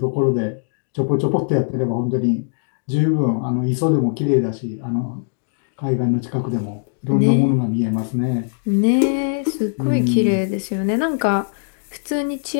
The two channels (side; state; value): right; silent; digital silence